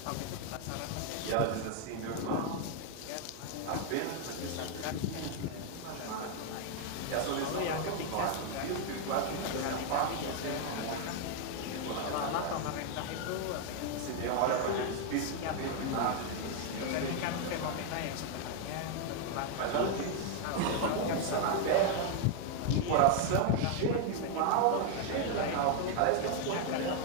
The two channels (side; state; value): both; different; correlation 0.01